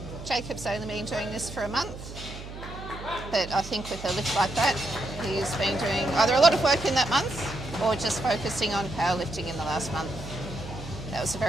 Jacob's only been doing this for a month, but I think with a lift like that, he's been doing either a lot of work in that month or just focusing on powerlifting in the last month. That was a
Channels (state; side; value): noise; right; hum, 12 dB below the sound